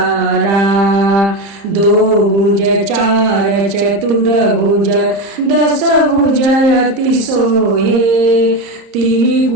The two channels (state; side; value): late; left; 30 ms